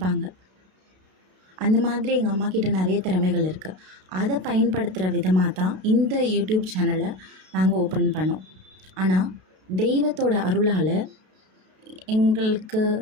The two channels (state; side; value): late; left; 32 ms